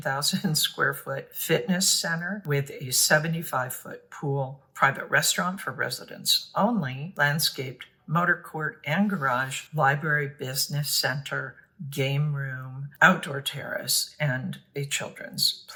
square foot fitness center with a 75-foot pool, private restaurant for residents only, landscaped motor court and garage, library, business center, game room, outdoor terrace, and a children's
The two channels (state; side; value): identical; both; correlation 1.00